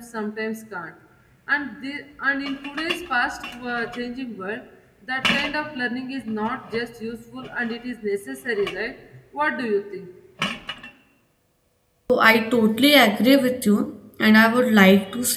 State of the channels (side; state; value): both; identical; correlation 1.00